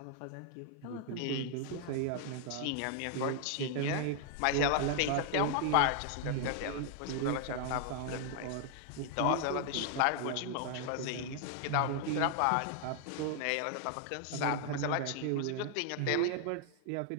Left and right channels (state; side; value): different; both; correlation 0.00